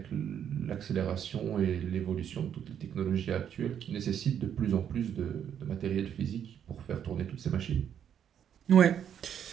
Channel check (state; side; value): quieter; left; 9.0 dB